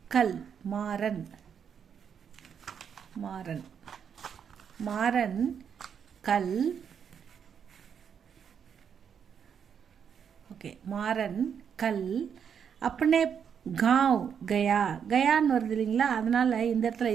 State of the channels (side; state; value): left; quieter; 7.6 dB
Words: கல். மாறன் மாறன் மாறன் கல். ஓகே, மாறன் கல் அப்பனே காவ் கயா. கயான்னு வருது இல்லைங்களா, அதனால் இந்த இடத்துல